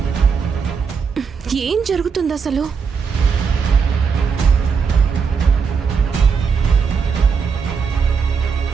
ఏం జరుగుతుంది అసలు?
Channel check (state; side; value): quieter; left; 5.9 dB